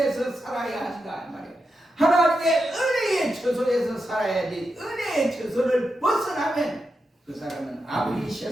살아야 한다 말이에요. 하나님의 은혜의 처소에서 살아야지 은혜의 처소를 벗어나면 그 사람은 아무리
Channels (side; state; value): both; normal; correlation 0.87